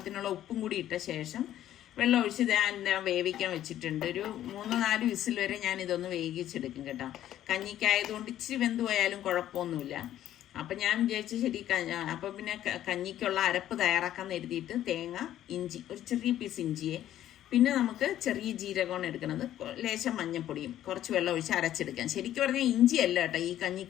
ഉപ്പും കൂടി ഇട്ട ശേഷം വെള്ളം ഒഴിച്ച് ഞാൻ വേവിക്കാൻ വെച്ചിട്ടുണ്ട്. ഒരു 3-4 വിസിൽ വരെ ഞാൻ ഇതൊന്ന് വേവിച്ചെടുക്കും കേട്ടോ. കഞ്ഞിക്കായതുകൊണ്ട് ഇച്ചിരി വെന്ത് പോയാലും കുഴപ്പമൊന്നുമില്ല. അപ്പം ഞാൻ വിചാരിച്ചു ശരി. അപ്പം പിന്നെ കഞ്ഞിക്കുള്ള അരപ്പ് തയ്യാറാക്കാൻ എഴുതിയിട്ട് തേങ്ങ, ഇഞ്ചി, ഒരു ചെറിയ പീസ് ഇഞ്ചിയെ, പിന്നെ നമുക്ക് ചെറിയ ജീരകമാണ് എടുക്കുന്നത്, ലേശം മഞ്ഞപ്പൊടിയും കുറച്ച് വെള്ളം ഒഴിച്ച് അരച്ചെടുക്കാം. ശരിക്കും പറഞ്ഞാൽ ഇഞ്ചിയല്ല കേട്ടോ ഈ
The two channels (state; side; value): quieter; right; 12.2 dB